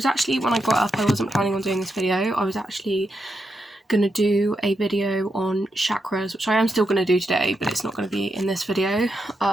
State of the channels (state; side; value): normal; both; correlation 0.84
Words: actually, when I got up, I wasn't planning on doing this video. I was actually going to do a video on chakras, which I am still going to do today, but it's not going to be in this video.